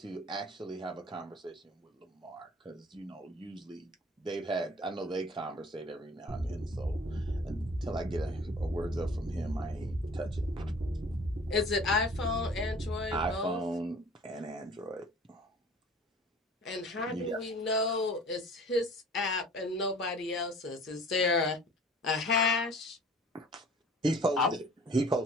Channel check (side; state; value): both; normal; correlation 0.48